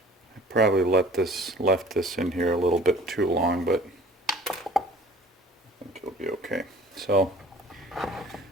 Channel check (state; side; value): normal; both; correlation 0.48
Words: I probably left this in here a little bit too long, but I think it'll be okay. So